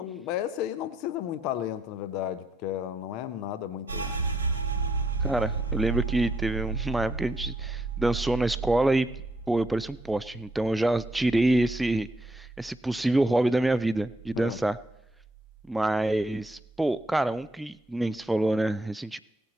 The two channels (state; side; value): normal; both; correlation 0.74